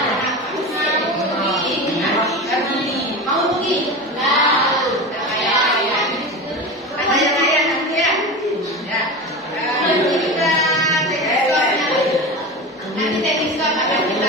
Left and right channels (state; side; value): normal; both; correlation 0.26